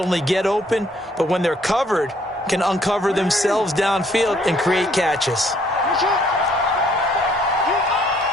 get open, but when they're covered, can uncover themselves downfield and create catches.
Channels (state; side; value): normal; both; correlation 0.65